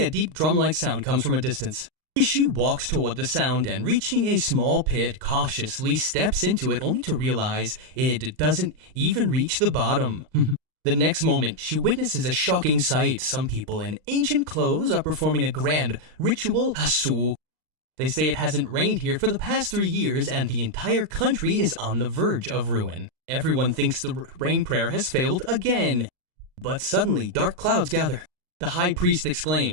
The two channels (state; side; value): late; left; 39 ms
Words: a deep drum-like sound comes from a distance. She walks toward the sound and, reaching a small pit, cautiously steps into it only to realize it doesn't even reach the bottom. The next moment, she witnesses a shocking sight. Some people in ancient clothes are performing a grand ritual hasu. They say it hasn't rained here for the past 3 years and the entire country is on the verge of ruin. Everyone thinks the rain prayer has failed again. But suddenly, dark clouds gather. The high priest